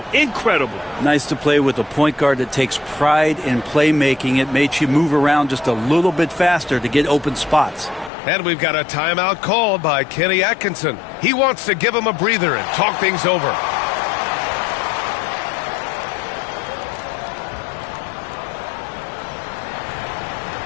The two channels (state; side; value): drops out; right; at 8.1 s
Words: Incredible. Nice to play with a point guard that takes pride in playmaking. It makes you move around just a little bit faster to get open spots. And we've got a timeout called by Kenny Atkinson. He wants to give him a breather and talk things over.